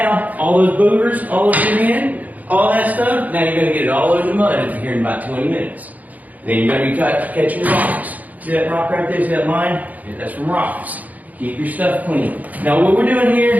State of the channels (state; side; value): late; left; 0.078 ms